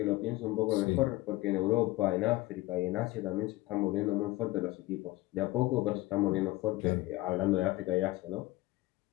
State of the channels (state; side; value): quieter; right; 19.2 dB